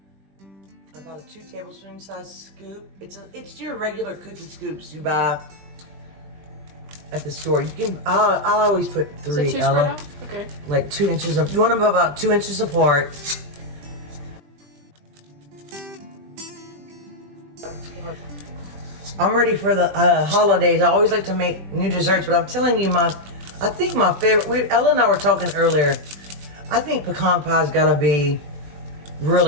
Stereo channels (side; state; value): left; late; 20 ms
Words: a 2 tablespoon size scoop. It's your regular cookie scoops you buy at the store. I'll always put 3, Ella. Okay. Like 2 inches you want them about 2 inches apart. I'm ready for the holidays. I always like to make new desserts, but I'm telling you, I think my favorite. Ella and I were talking earlier. I think pecan pie's gotta be